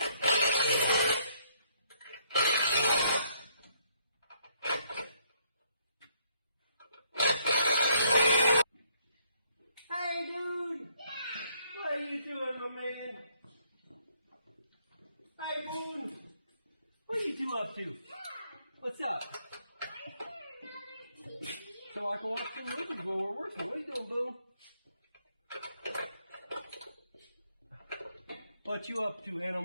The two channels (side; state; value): both; inverted; correlation -0.69